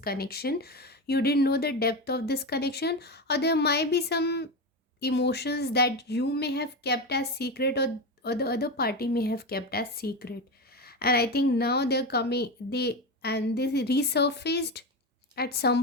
You didn't know the depth of this connection, or there might be some emotions that you may have kept as secret, or the other party may have kept as secret. And I think now they're coming, they resurfaced at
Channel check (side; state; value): both; normal; correlation 0.18